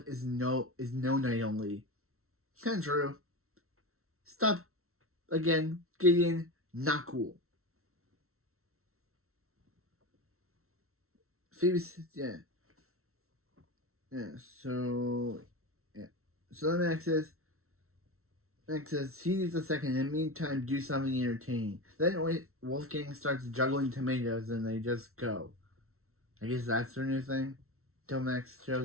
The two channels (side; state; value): left; late; 0.63 ms